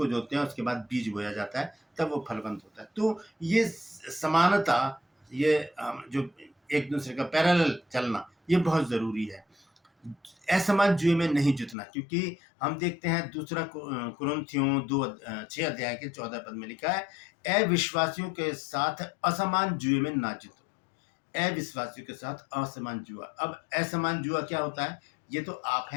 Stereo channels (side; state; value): right; drops out; at 11.8 s